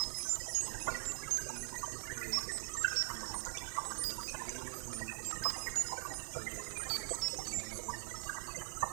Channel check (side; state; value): left; silent; digital silence